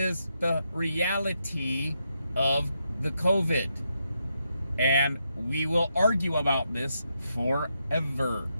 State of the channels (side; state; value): both; inverted; correlation -0.81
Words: the reality of the COVID. And we will argue about this forever.